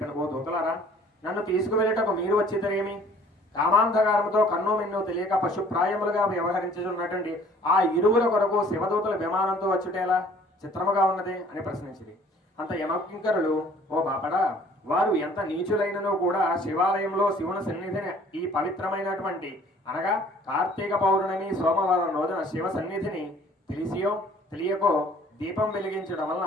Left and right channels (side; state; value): both; normal; correlation 0.54